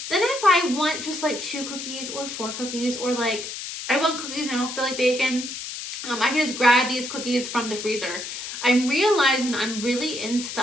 then if I want just like 2 cookies or 4 cookies or like I want cookies and I don't feel like baking, I can just grab these cookies from the freezer. I'm realizing I'm really into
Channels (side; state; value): left; noise; hiss, 8 dB below the sound